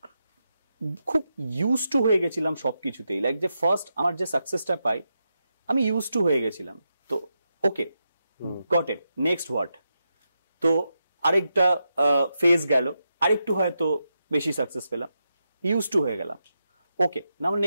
খুব ইউজ টু হয়ে গেছিলাম সবকিছুতেই। লাইক যে ফার্স্ট আমার যে সাকসেসটা পাই, আমি ইউজ টু হয়ে গেছিলাম, তো ওকে গট ইট, নেক্সট হোয়াট, তো আরেকটা ফেজ গেল, আরেকটু হয়তো বেশি সাকসেস পেলাম, ইউজ টু হয়ে গেলাম, ওকে নাও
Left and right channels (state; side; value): inverted; both; correlation -0.86